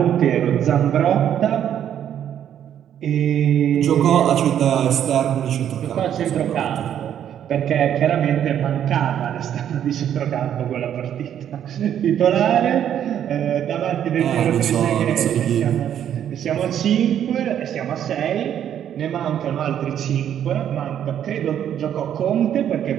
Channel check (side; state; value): left; quieter; 9.9 dB